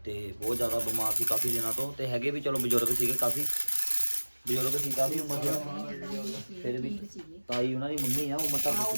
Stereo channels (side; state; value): both; inverted; correlation -1.00